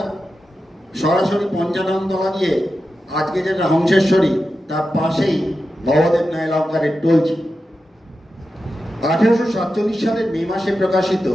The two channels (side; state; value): both; normal; correlation 0.91